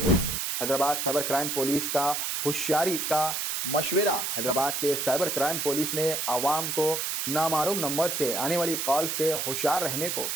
हैदराबाद साइबर क्राइम पुलिस का होशियारी का मशवरा। हैदराबाद के साइबर क्राइम पुलिस ने आवाम को नामालूम नंबर से आने वाली कॉल से होशियार रहने को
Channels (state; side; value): noise; right; hiss, 1 dB below the sound